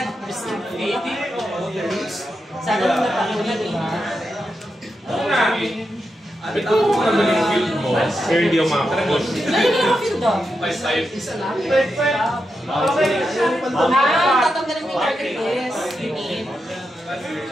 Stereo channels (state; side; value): normal; both; correlation 0.87